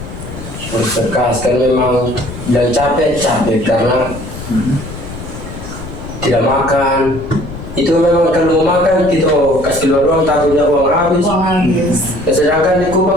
Kan memang dan capek karena tidak makan. Itu memang kalau mau makan kita kasih keluar uang, takutnya uang habis. Sedangkan di Kupang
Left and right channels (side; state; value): left; noise; rumble, 12 dB below the sound